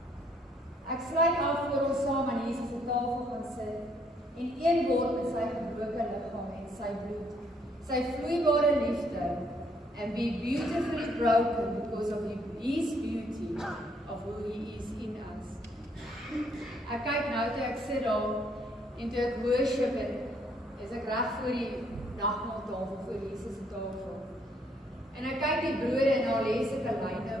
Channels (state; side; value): normal; both; correlation 0.68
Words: Ek sluit af voor ons saam aan Jesus se tafel gaan sit en een word met sy gebroke liggaam en sy bloed, sy vloeibare liefde, and be beautifully broken because of His beauty of who He is in us. Ek kyk nou toe ek sit daar en toe ek worship en is ek reg voor die nagmaaltafel, voor Jesus se tafel. En ek kyk die brode en daar lê sulke lyne